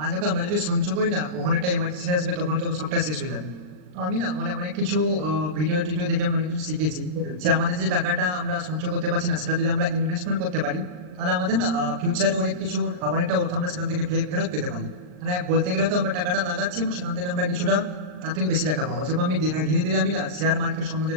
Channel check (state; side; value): late; left; 39 ms